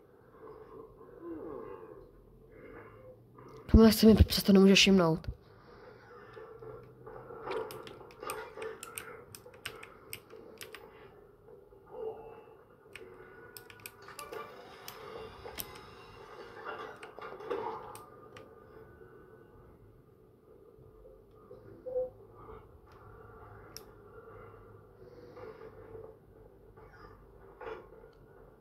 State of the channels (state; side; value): identical; both; correlation 1.00